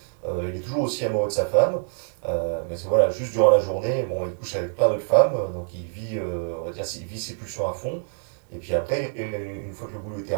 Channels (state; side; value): silent; left; digital silence